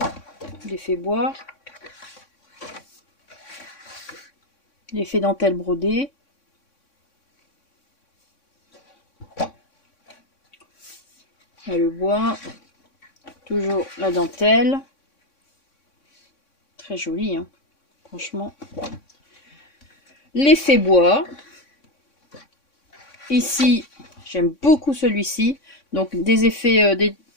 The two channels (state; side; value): late; right; 3.6 ms